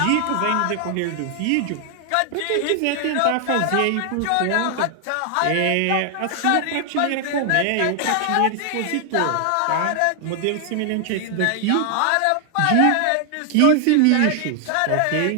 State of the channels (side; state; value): both; different; correlation 0.00